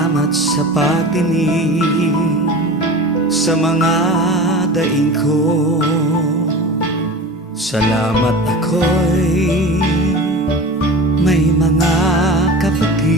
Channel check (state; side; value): normal; both; correlation 0.33